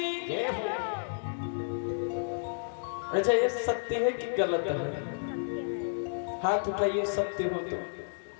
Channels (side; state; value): right; silent; digital silence